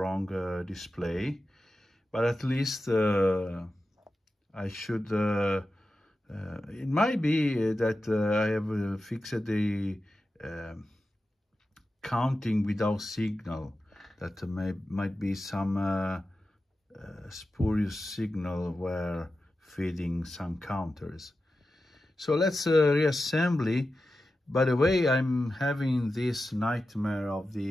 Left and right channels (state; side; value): normal; both; correlation 0.92